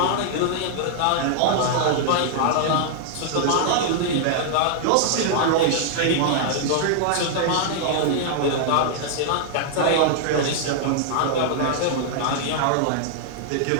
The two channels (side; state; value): both; different; correlation -0.01